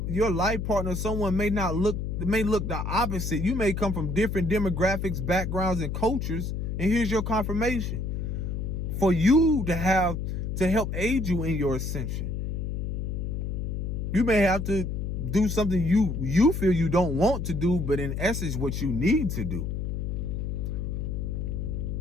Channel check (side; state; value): left; noise; hum, 2 dB below the sound